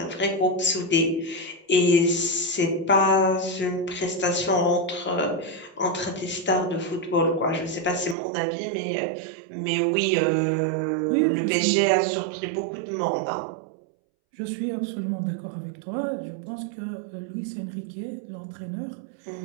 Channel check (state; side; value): drops out; left; at 8.2 s